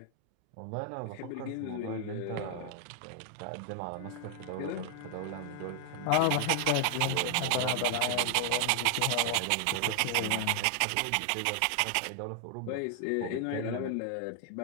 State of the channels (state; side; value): different; both; correlation 0.00